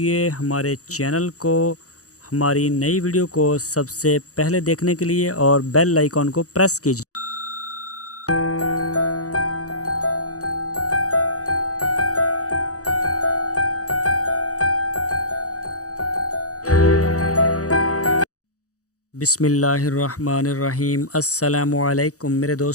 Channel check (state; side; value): late; right; 0.66 ms